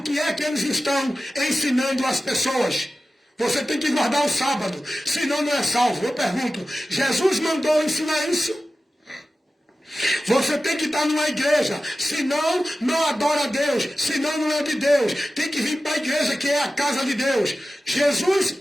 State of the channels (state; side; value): normal; both; correlation 0.94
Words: que é que eles estão ensinando às pessoas? Você tem que guardar o sábado, senão não é salvo. Eu pergunto, Jesus mandou ensinar isso? Você tem que estar numa igreja, senão não adora a Deus, senão não é de Deus. Tem que vir para a igreja, que é a casa de Deus. Jesus